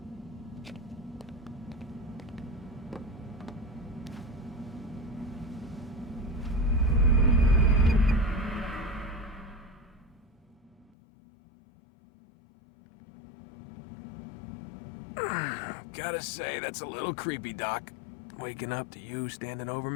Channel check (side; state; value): right; drops out; at 10.9 s